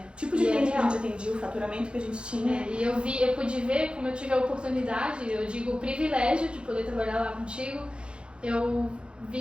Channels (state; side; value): late; left; 0.055 ms